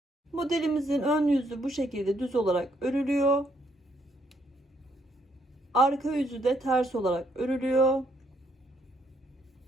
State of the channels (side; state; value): both; normal; correlation 0.72